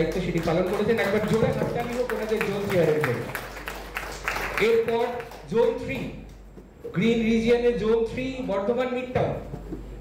সেটি পালন করেছেন। একবার জোরে হাততালি হোক ওনাদের জোন চেয়ারের জন্য। এরপর জোন 3 গ্রিন রিজিয়নের zone 3 Bardhaman mid town,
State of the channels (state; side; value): identical; both; correlation 1.00